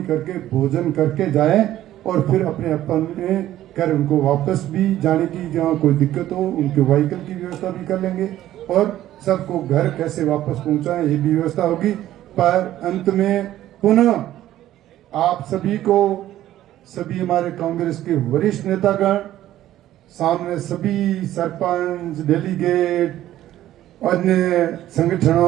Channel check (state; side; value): quieter; left; 13.4 dB